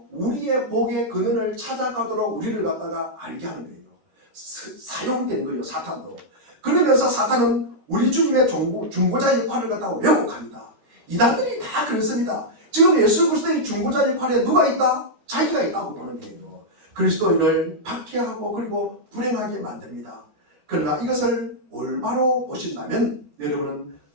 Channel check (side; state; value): left; late; 13 ms